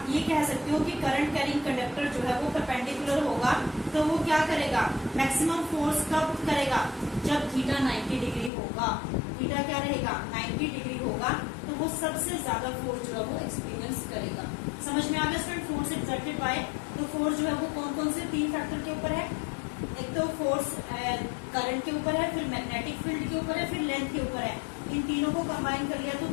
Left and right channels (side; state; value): right; drops out; at 8.5 s